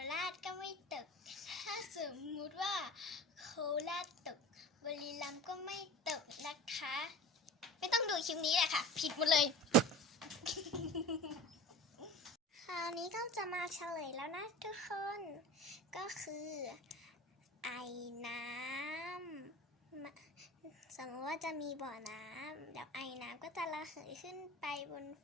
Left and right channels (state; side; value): normal; both; correlation 0.36